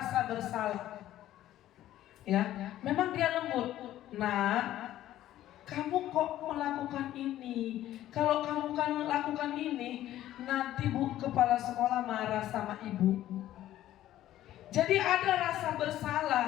bersalah. Memang dia lembut. Nah, kamu kok melakukan ini? Kalau kamu kan melakukan ini, nanti kepala sekolah marah sama ibu. Jadi ada rasa bersalah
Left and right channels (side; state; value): right; quieter; 13.4 dB